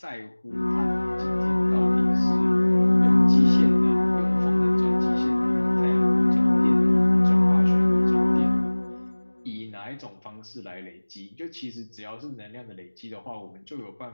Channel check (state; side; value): inverted; both; correlation -1.00